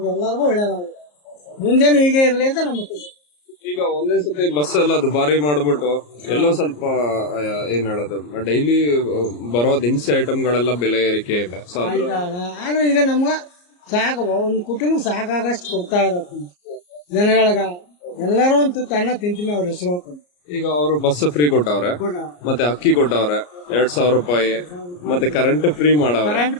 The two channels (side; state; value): right; late; 34 ms